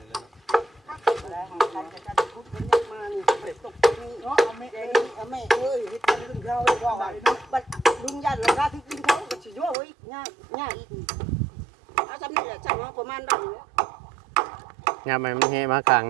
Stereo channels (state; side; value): drops out; left; at 9.8 s